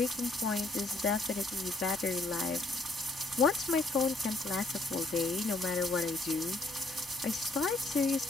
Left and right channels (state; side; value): quieter; right; 3.1 dB